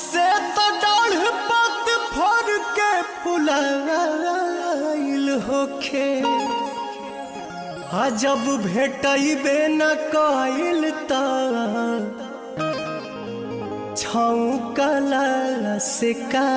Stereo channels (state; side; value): identical; both; correlation 1.00